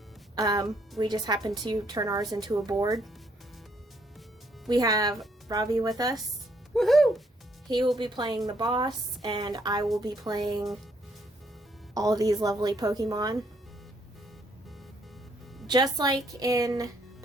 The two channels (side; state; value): both; normal; correlation 0.70